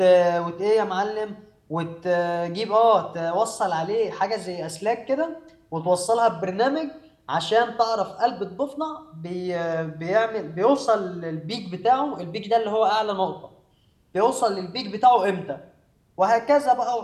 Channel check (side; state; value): both; identical; correlation 1.00